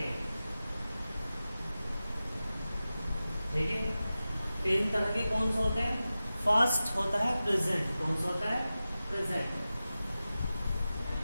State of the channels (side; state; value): both; inverted; correlation -0.95